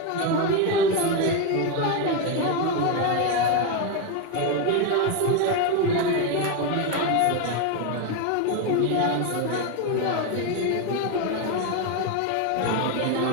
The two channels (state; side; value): different; both; correlation 0.02